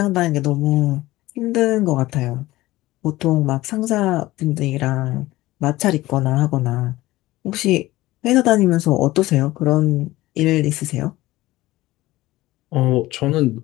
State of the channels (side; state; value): right; quieter; 17.8 dB